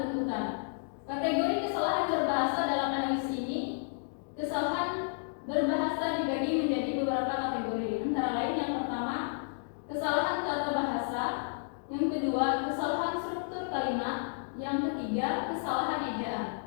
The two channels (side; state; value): right; silent; digital silence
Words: Kategori kesalahan berbahasa dalam analisis ini, kesalahan berbahasa dibagi menjadi beberapa kategori, antara lain yang pertama, kesalahan tata bahasa, yang kedua, kesalahan struktur kalimat, yang ketiga, kesalahan ejaan.